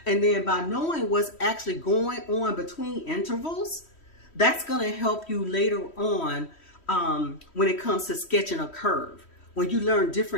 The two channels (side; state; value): right; late; 3.1 ms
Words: And then by knowing what's actually going on between intervals, that's going to help you later on when it comes to sketching a curve, when you learn